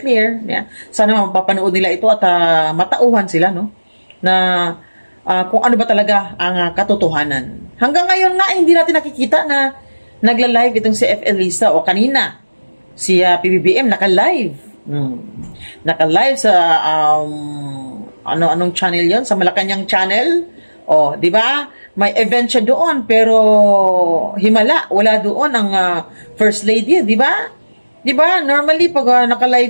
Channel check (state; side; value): inverted; both; correlation -1.00